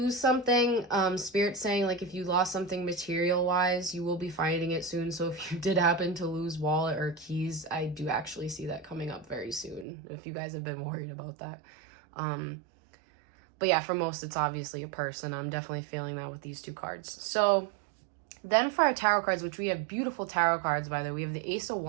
something, Spirit's saying, like, if you lost something material-wise, you will be finding it soon. So if you did happen to lose wallet or keys, I do actually see that coming up very soon, if you guys have been worried about that. But yeah, for most, it's obviously a person. I'm definitely feeling that with these two cards. So then for our tarot cards, which we have beautiful tarot cards, by the way, we have the Ace of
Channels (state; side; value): drops out; left; at 9.9 s